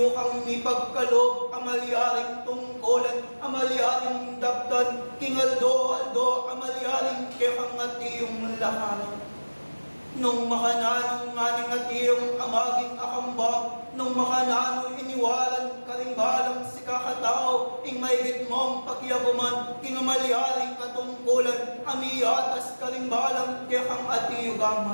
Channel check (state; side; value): inverted; both; correlation -1.00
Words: kang ipagkalob, amalyaring tungkolan, amalyaring daptan, kingaldo-aldo, amalyaring kaya kang nga tiyong lahanan. Nung makananong nga nga tiyong amaging akambang, nung makanano iniwalan karimbalang si kakatao, ing maigit mong pakiyaguman, kingamalyaring katungkulan, amiyatas karimbalang kaya kang